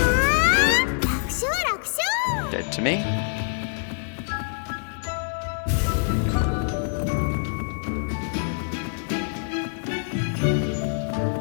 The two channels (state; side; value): silent; right; digital silence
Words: Dead to me.